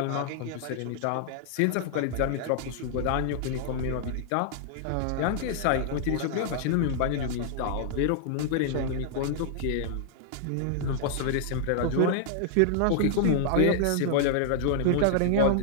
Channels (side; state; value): both; different; correlation -0.01